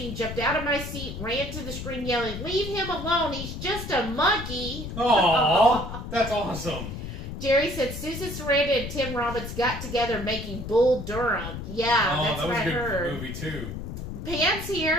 jumped out of my seat, ran to the screen yelling, leave him alone. He's just a monkey. Aw, that's awesome. Jerry said, Susan Sarandon and Tim Robbins got together making Bull Durham. Yeah, that's that what was I a good heard. movie, too. Pam's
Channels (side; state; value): left; noise; rumble, 8 dB below the sound